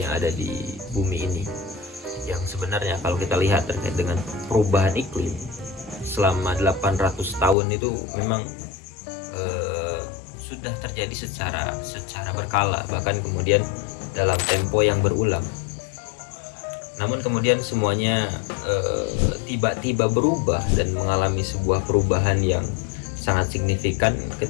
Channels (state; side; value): drops out; right; at 7.6 s